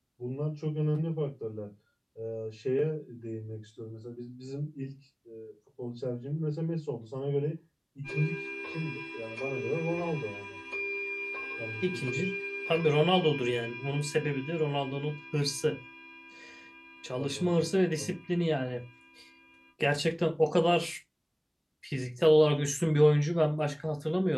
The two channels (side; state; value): both; identical; correlation 1.00